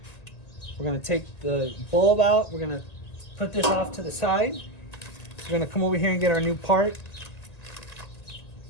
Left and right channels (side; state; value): right; late; 1.9 ms